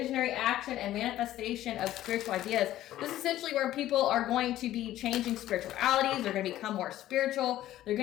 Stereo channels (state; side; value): quieter; right; 13.8 dB